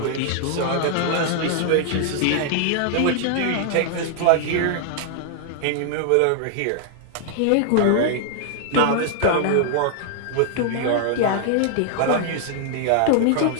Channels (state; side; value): different; both; correlation 0.00